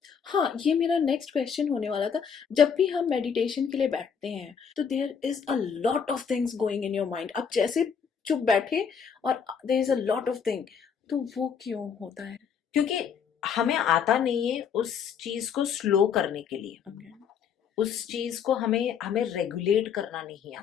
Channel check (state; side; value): quieter; right; 7.0 dB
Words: हाँ, ये मेरा नेक्स्ट क्वेश्चन होने वाला था। जब भी हम मेडिटेशन के लिए बैठते हैं तो there is a lot of things going in your mind. आप जैसे चुप बैठे और there is a lot of thing, तो वो क्यों होता है? क्योंकि हमें आता नहीं है उस चीज को स्लो करने के लिए, Okay. उस चीज को हमें हमें रेगुलेट करना नहीं